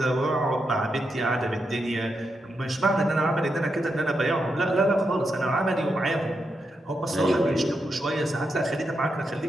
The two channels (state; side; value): normal; both; correlation 0.84